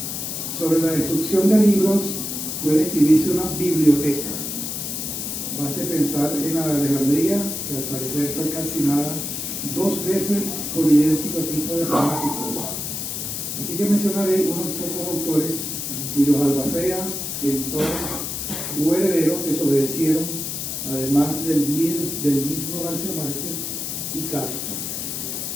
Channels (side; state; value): left; noise; hiss, 4 dB below the sound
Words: Sobre la destrucción de libros puede escribirse una biblioteca. Baste pensar en la de Alejandría, que al parecer fue calcinada 2 veces con idéntico tipo de fanáticos. Así que mencionaré unos pocos autores cuyos albaceas, editores u herederos desobedecieron, además del mismo García Márquez y Kafka.